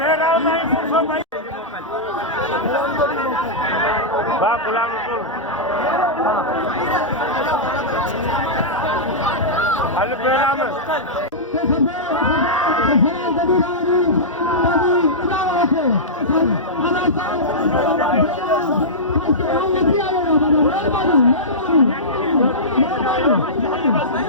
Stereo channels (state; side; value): normal; both; correlation -0.14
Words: नहीं फुसो भाई बा गुलाम रसूल हल बेरा में